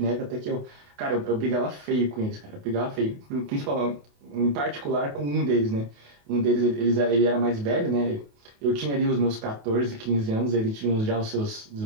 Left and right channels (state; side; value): late; left; 28 ms